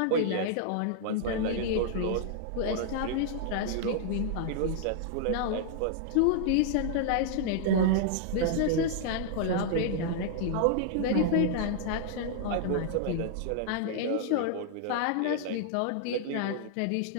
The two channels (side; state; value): both; different; correlation -0.01